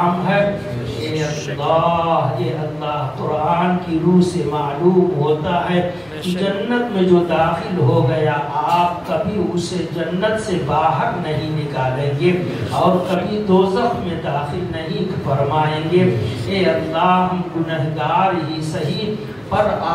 ہے اے اللہ قرآن کی روح سے معلوم ہوتا ہے کہ جنت میں جو داخل ہو گیا آپ کبھی اسے جنت سے باہر نہیں نکالیں گے اور کبھی دوزخ میں داخل نہیں فرمائیں گے اے اللہ ہم گنہگار ہی صحیح پر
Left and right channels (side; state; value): right; noise; hum, 29 dB below the sound